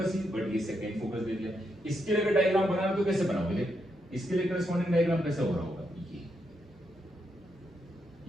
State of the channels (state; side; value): normal; both; correlation 0.81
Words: ही, बट ये सेकंड फोकस दे दिया। इसके लिए अगर डायग्राम बनाना तो कैसे बनाओगे, देख इसके लिए करस्पॉन्डिंग डायग्राम कैसे हो रहा होगा, ये